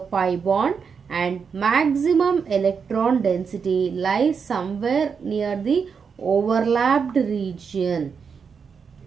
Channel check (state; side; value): quieter; left; 6.1 dB